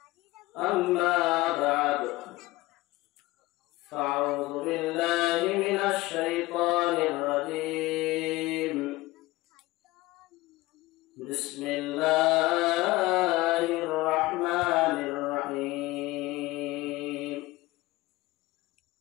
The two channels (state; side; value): quieter; right; 19.7 dB